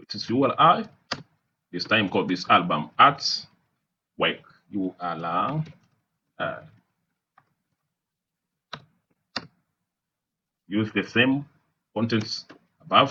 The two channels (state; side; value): identical; both; correlation 1.00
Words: is URI. This time called this album artwork URI. Use the same contents